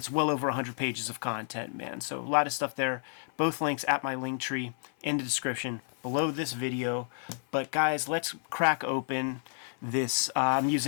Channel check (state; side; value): silent; right; 57 dB below the other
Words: well over 100 pages of content, man. So a lot of stuff there. Both links at my link tree in the description below this video. But guys, let's crack open this. I'm